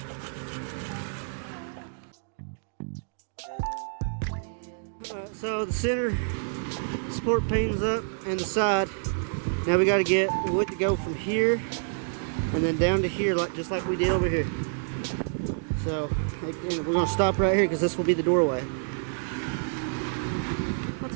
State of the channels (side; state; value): left; silent; digital silence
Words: So the center support pane's up and the side. Now we got to get wood to go from here and then down to here, just like we did over here. So again, we're gonna stop right here because this will be the doorway. Not